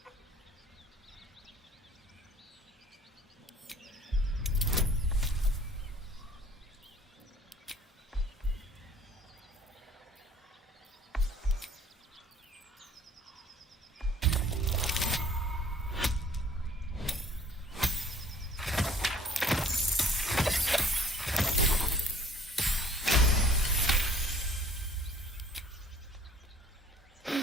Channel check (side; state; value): both; normal; correlation 0.54